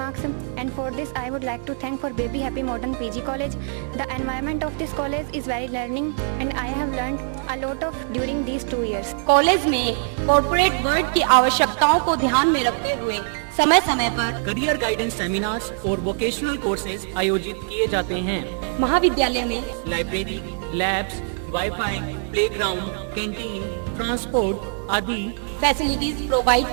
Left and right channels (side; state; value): left; silent; digital silence